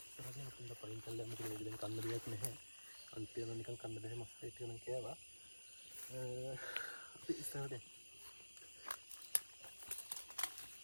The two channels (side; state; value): both; inverted; correlation -1.00